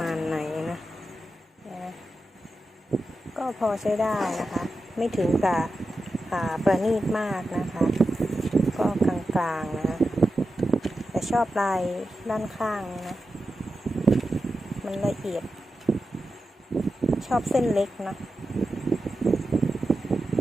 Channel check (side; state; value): both; normal; correlation 0.91